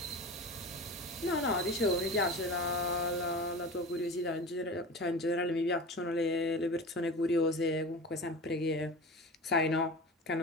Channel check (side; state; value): both; normal; correlation 0.32